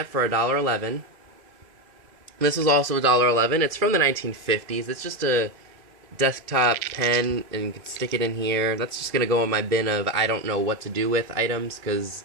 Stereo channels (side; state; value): left; late; 2.5 ms